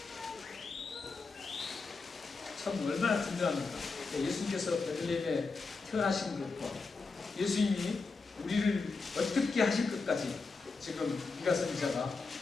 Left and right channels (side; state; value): right; quieter; 4.2 dB